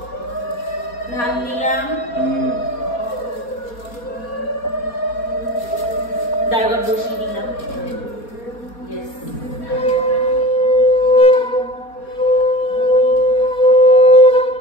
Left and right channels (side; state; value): right; late; 4.2 ms